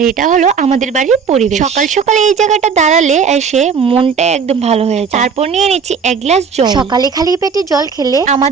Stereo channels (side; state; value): left; quieter; 6.1 dB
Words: এটা হলো আমাদের বাড়ির পরিবেশ। সকাল সকালে এই জায়গাটা দাঁড়ালে এসে মনটা একদম ভালো হয়ে যায়। তারপর নিয়ে নিচ্ছি এক গ্লাস জল। সকালে খালি পেটে জল খেলে